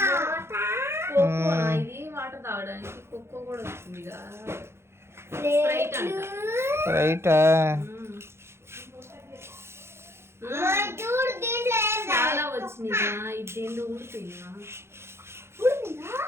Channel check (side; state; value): left; late; 0.12 ms